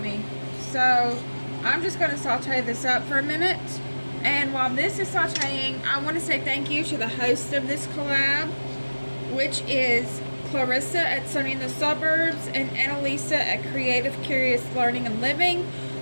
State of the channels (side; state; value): both; inverted; correlation -1.00